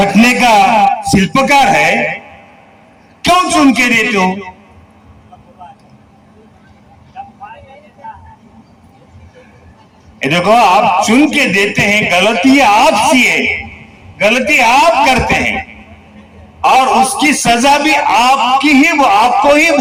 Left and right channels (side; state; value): both; identical; correlation 1.00